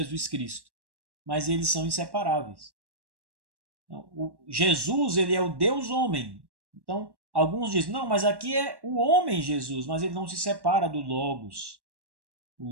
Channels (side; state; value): left; late; 1.1 ms